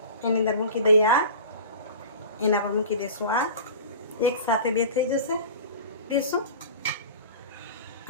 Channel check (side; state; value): both; inverted; correlation -0.37